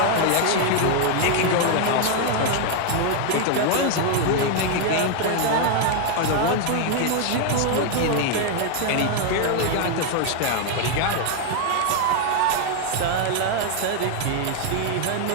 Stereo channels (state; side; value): different; both; correlation 0.00